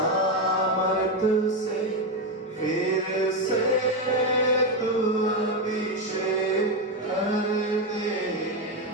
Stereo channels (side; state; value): both; normal; correlation 0.09